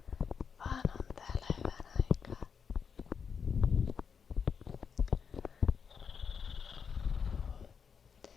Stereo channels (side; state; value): right; quieter; 6.4 dB